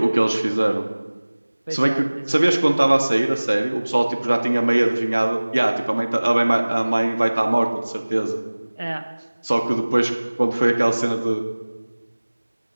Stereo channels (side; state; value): both; inverted; correlation -1.00